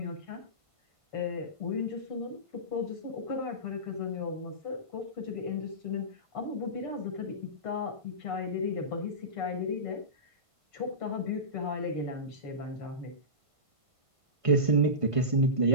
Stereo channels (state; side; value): late; left; 1.5 ms